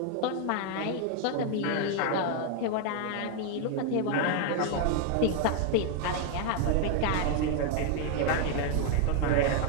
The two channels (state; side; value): different; both; correlation 0.00